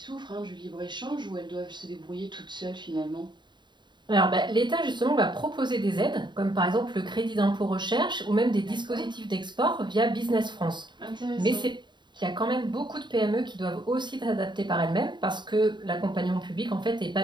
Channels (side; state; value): left; late; 0.22 ms